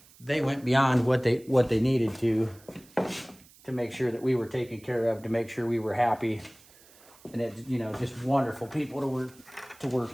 what they needed to make sure that we were taken care of, to make sure we were happy. And it, you know, just wonderful people to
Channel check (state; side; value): noise; right; hiss, 26 dB below the sound